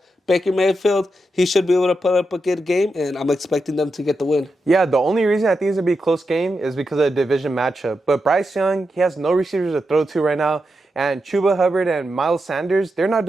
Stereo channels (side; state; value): both; normal; correlation 0.87